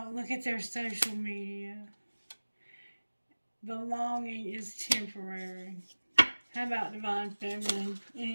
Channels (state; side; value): inverted; both; correlation -1.00